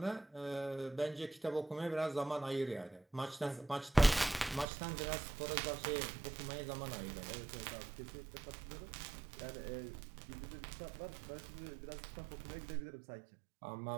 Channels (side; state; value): left; drops out; at 4.7 s